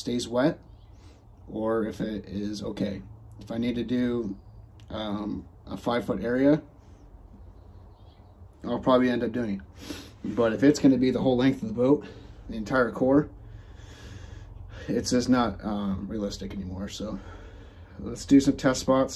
wet, or if it is okay. If I need to do a 5-foot area, I'll probably end up doing it. But if it's going to be the whole length of the boat, the entire core, it's just not realistic anymore. So let's do some test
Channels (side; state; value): both; identical; correlation 1.00